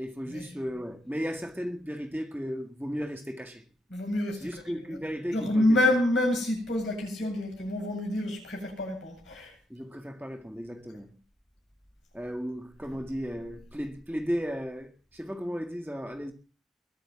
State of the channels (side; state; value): both; normal; correlation 0.80